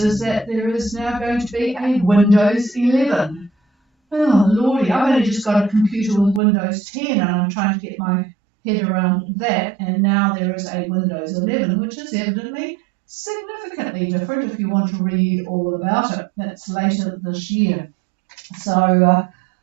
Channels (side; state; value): left; drops out; at 6.4 s